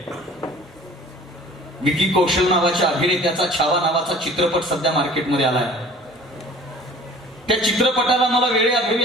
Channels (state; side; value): normal; both; correlation 0.47